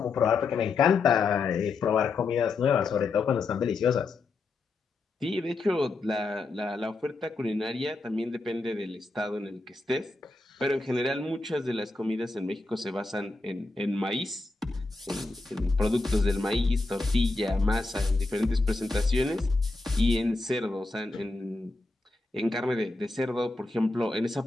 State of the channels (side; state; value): right; quieter; 3.5 dB